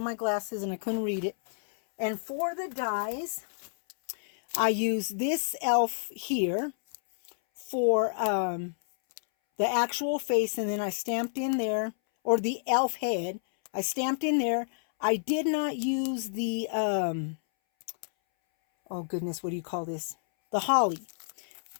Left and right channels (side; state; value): right; silent; 58 dB below the other